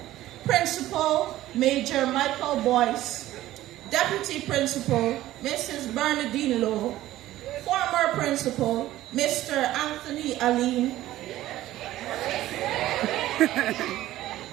Principal Major Michael Boyce, Deputy Principal Mrs. Bernadine Lowe, former Principal Mr. Anthony Aline,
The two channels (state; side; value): quieter; left; 14.9 dB